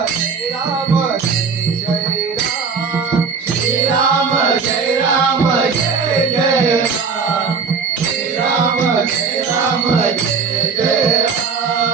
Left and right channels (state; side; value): quieter; left; 5.5 dB